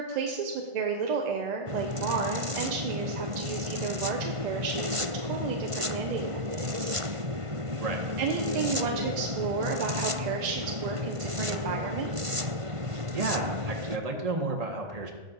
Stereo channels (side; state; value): left; late; 1.5 ms